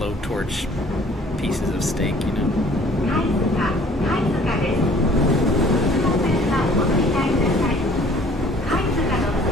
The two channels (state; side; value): normal; both; correlation 0.54